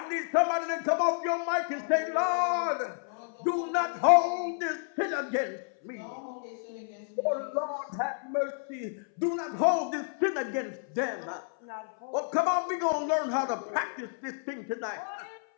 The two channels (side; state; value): right; silent; 58 dB below the other